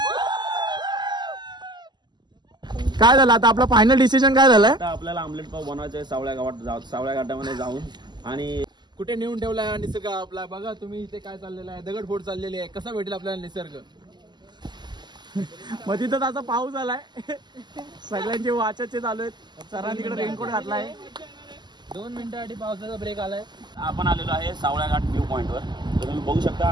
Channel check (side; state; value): left; late; 0.21 ms